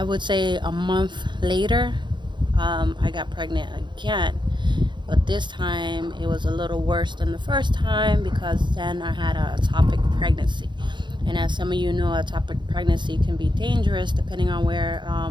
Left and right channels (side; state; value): left; late; 0.22 ms